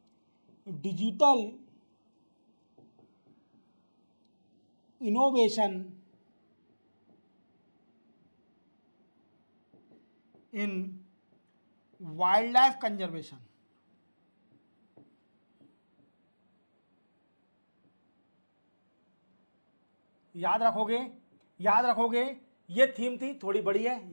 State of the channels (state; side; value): inverted; both; correlation -1.00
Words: digital innovation in wild life conservation. याद रखोगे, याद रखोगे, ये थीम थी, थोड़ी बड़ी है,